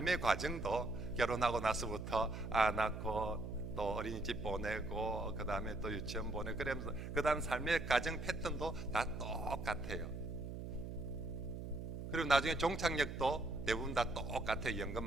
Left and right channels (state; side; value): noise; right; hum, 7 dB below the sound